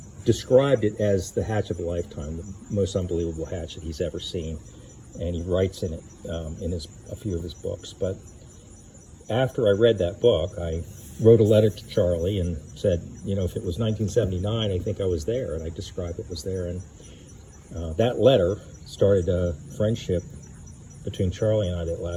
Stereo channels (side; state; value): both; identical; correlation 1.00